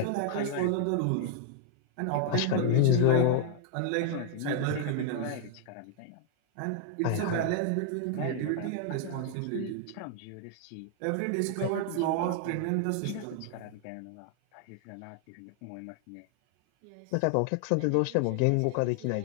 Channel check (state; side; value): different; both; correlation 0.00